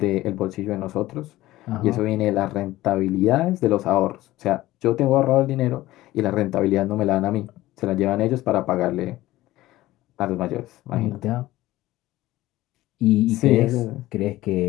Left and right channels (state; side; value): quieter; right; 16.6 dB